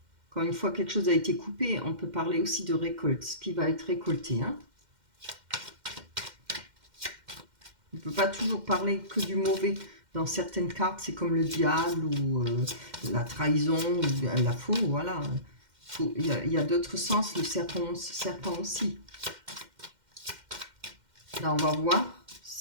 Quand une fois quelque chose a été coupé, on peut parler aussi de récolte, ce qui va être récolté. Hein. On ne peut pas toujours parler que du mauvais. Dans certaines cartes, c'est comme le diable ou la trahison ou la faux, voilà. Il y a d'autres sens, le serpent aussi. Là, on va voir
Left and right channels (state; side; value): late; left; 2.1 ms